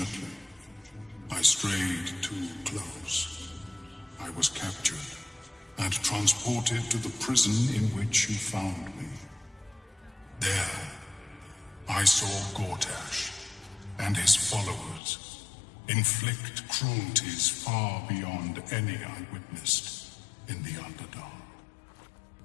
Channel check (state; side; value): drops out; right; at 15.0 s